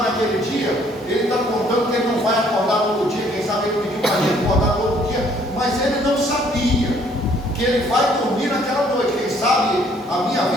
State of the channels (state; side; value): normal; both; correlation 0.62